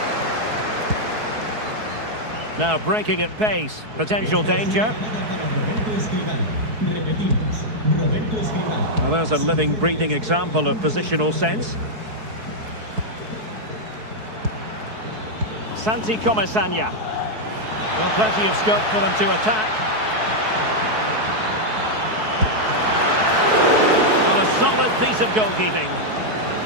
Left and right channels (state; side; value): late; left; 4.6 ms